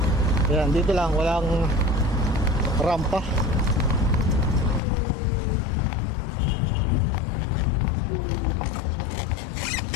Yan, dito lang walang rampa.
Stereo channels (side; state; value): right; drops out; at 4.8 s